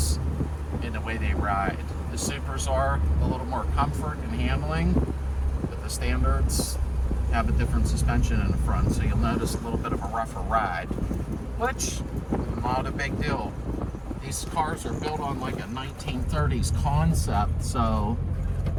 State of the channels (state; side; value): identical; both; correlation 1.00